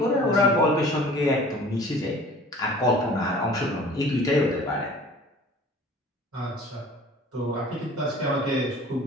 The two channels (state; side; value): normal; both; correlation 0.46